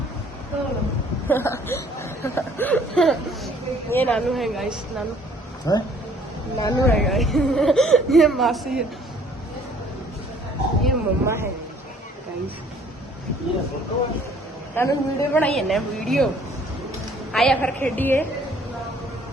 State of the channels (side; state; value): both; normal; correlation 0.58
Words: ये नानू है गाइस, नानू है गाइस। ये मासी है, ये मम्मा है गाइस। नानू वीडियो बनाई है ना, वीडियो आया फिर खेडिए